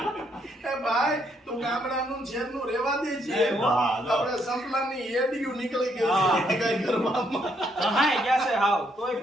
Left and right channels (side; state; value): both; normal; correlation 0.73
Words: એ ભાઈ તું ગામડાનું શહેરનું રેવા દે છે. વાહ, આપણે સંપલાની એડિયું નીકળી ગઈ છે કઈ ઘરમાં. હાય ગયા છે હાવ તોય